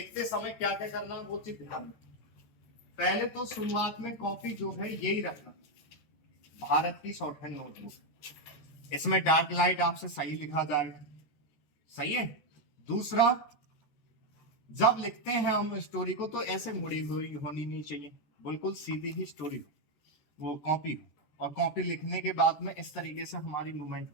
समय क्या क्या करना वो चीज ध्यान में। पहले तो शुरुआत में कॉपी जो है यही रखना, भारत की शॉर्टहैंड नोटबुक, इसमें डार्क लाइट आपसे सही लिखा जाए। सही है। दूसरा, जब लिखते हैं हम स्टोरी को तो ऐसे मुड़ी हुई होनी नहीं चाहिए, बिल्कुल सीधी ही स्टोरी हो, वो कॉपी हो। और कॉपी लिखने के बाद में इस तरीके से हमारी मूवमेंट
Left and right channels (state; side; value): late; right; 14 ms